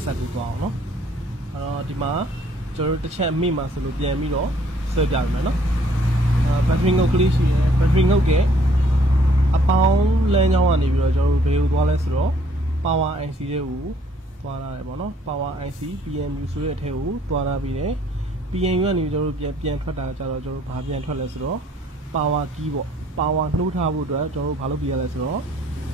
ဆက်ကိုသွားအောင်နော်အဲ့တော့ဒီမှာကျွန်တော်တို့တစ်ချက်မိမှဆိုလို့ပြန်ပြီးတော့ဆွဲပြရမယ်နော်battery ငုတ်ကလေးရှိတယ် battery ငုတ်ရဲ့အပေါင်းလမ်းကြောင်းကနေပြီးတော့ကျွန်တော်တို့ဘယ်ကိုသွားလဲဆိုတော့ power IC တွေကိုသွားရတယ်ပေါ့နော် power IC PMU ဆိုတဲ့အထက်ကိုသွားရပြီးတယ် PMU ကနေကျွန်တော်တို့ပြန်ထွက်တာကြတော့ကျွန်တော်တို့ဘာပြန်ထွက်လဲဆိုတော့ power key ပေါ့ power နှိုးထားဖို့အတွက်ကျွန်တော်တို့ဘာလုပ်ပြရလဲဆိုတော့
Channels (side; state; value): both; normal; correlation 0.62